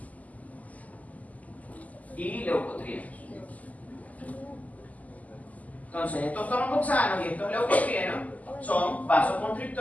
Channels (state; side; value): late; right; 0.075 ms